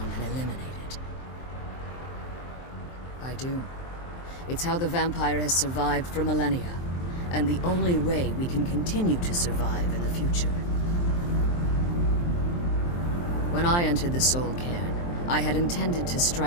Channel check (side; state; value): right; late; 23 ms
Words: and eliminated. I do. It's how the vampire has survived for millennia, and the only way we can continue to survive in the future. When I entered the Soul Cairn, I had intended to